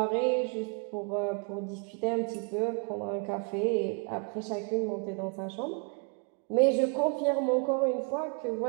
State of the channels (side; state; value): left; quieter; 37.3 dB